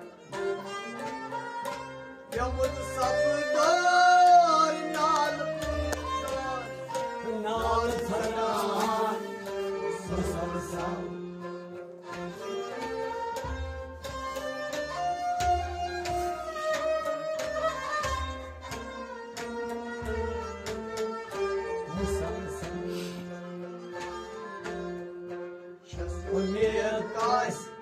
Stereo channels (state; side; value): identical; both; correlation 1.00